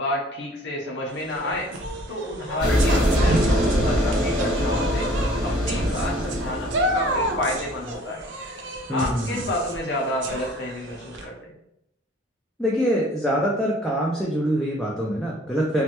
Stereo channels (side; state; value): both; normal; correlation 0.53